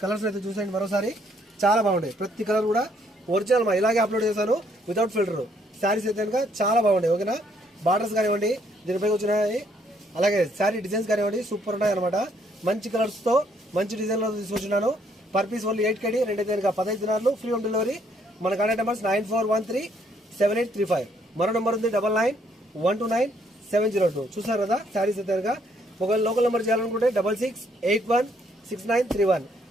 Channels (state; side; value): normal; both; correlation 0.68